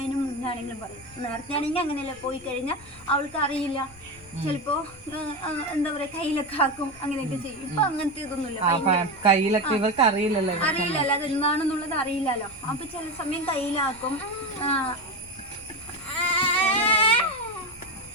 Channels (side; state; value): left; noise; rumble, 23 dB below the sound